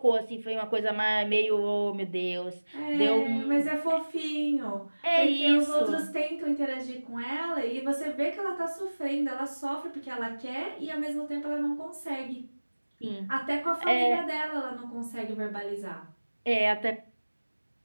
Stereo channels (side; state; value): both; inverted; correlation -1.00